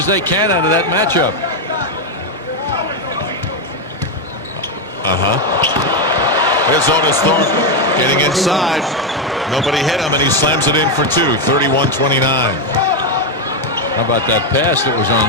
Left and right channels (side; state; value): both; normal; correlation 0.06